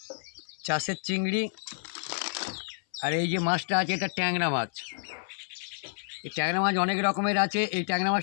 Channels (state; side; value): silent; right; 58 dB below the other